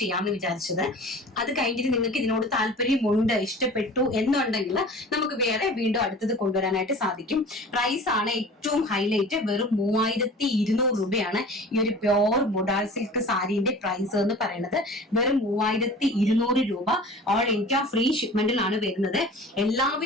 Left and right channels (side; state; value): both; normal; correlation 0.41